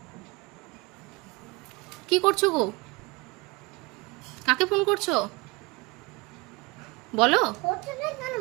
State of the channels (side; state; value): left; quieter; 25.1 dB